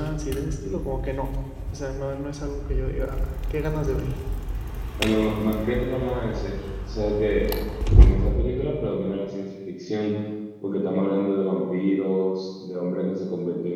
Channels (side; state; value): both; identical; correlation 1.00